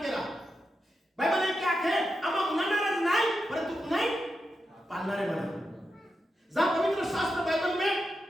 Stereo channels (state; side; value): normal; both; correlation 0.88